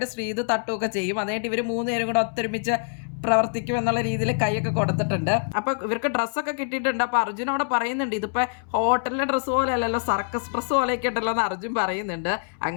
ശ്രീതു തട്ടുകയൊക്കെ ചെയ്യും. അതിനായിട്ട് ഇവര് 3 പേരും കൂടെ ഒത്തൊരുമിച്ച് പ്രവർത്തിക്കും എന്നുള്ള രീതിയിൽ കൈയൊക്കെ കൊടുത്തിട്ടുണ്ട്. അപ്പൊ ഇവർക്ക് ഡ്രസ്സൊക്കെ കിട്ടിയിട്ടുണ്ട്. അപ്പൊ അർജുൻ അവിടെ പറയുന്നുണ്ട്, ഇതിപ്പോ ഹോട്ടലിലെ ഡ്രസ്സ് പോലെ അല്ലല്ലോ, സർക്കസ് ഡ്രസ്സ് പോലെയൊക്കെ ഉണ്ടല്ലോ എന്ന് അർജുൻ പറയുന്നുണ്ട്.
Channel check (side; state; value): right; silent; 62 dB below the other